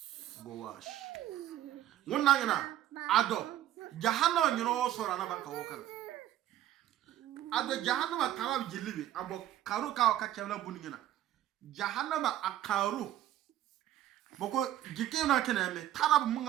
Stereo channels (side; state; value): left; quieter; 12.8 dB